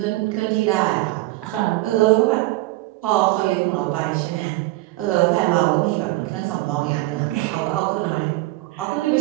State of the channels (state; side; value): quieter; left; 19.3 dB